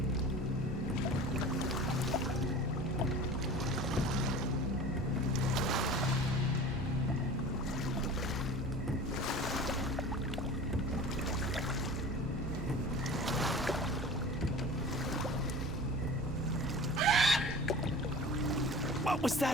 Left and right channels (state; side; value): normal; both; correlation 0.38